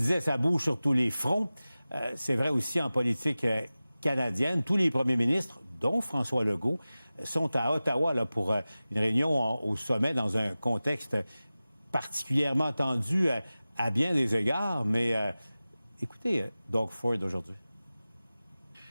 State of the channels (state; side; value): inverted; both; correlation -0.96